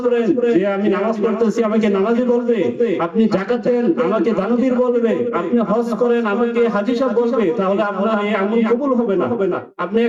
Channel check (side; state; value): both; identical; correlation 1.00